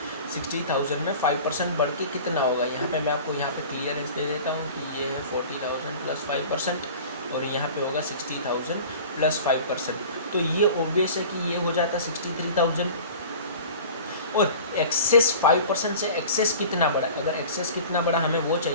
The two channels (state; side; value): inverted; both; correlation -0.40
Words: 60,000 में 5% बढ़ के कितना होगा। यहाँ पे मैं आपको यहाँ पे क्लियरेंस दे देता हूँ कि ये है 40,000 प्लस 5%, और यहाँ पे होगा 60,000 प्लस 5%, तो ये ऑब्वियस है कि ये हो जाता 63,000। और एक्सेस 5% से एक्सेस कितना बड़ा, अगर एक्सेस कितना बड़ा हमें वो